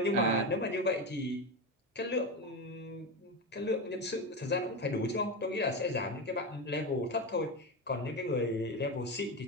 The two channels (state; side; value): normal; both; correlation 0.17